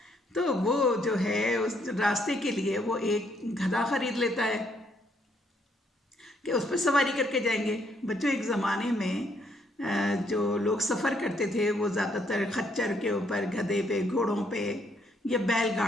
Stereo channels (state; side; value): normal; both; correlation 0.71